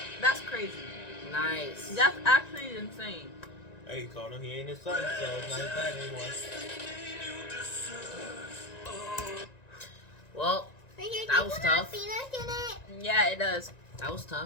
That's crazy. Nice. That's actually insane. Hey, you called him. He ain't his son, so it's not his dad anymore. Well, that was tough. Yeah, it does. That was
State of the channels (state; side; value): late; right; 1.9 ms